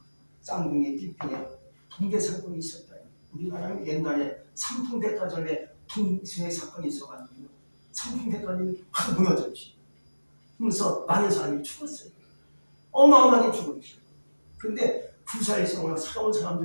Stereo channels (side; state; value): both; inverted; correlation -1.00